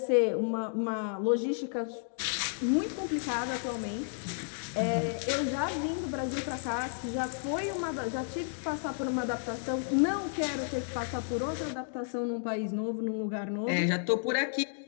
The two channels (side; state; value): right; silent; digital silence